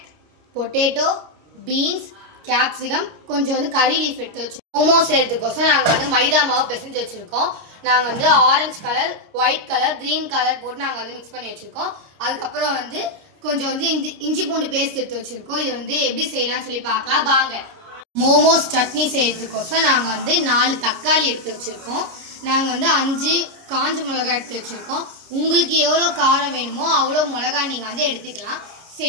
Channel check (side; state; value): left; late; 29 ms